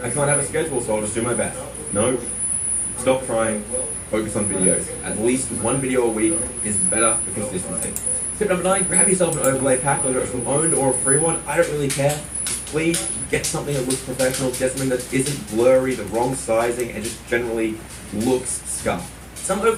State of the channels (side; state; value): both; identical; correlation 1.00